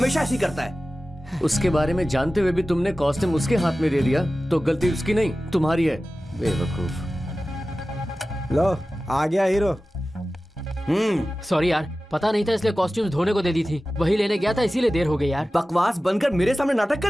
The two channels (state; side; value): normal; both; correlation 0.96